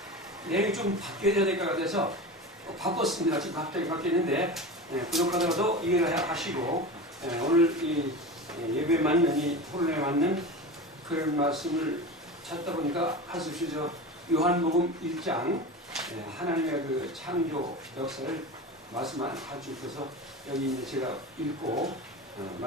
내용이 좀 바뀌어야 될 것 같아서 바꿨습니다. 지금 갑자기 바뀌었는데 부족하더라도 이해를 하시고 오늘 이 예배에 맞는 이 토론에 맞는 그런 말씀을 찾다 보니까 할 수 없이 요한복음 1장 하나님의 그 창조 역사를 말씀만 가지고 있어서 여기 이제 제가 읽고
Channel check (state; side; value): normal; both; correlation 0.29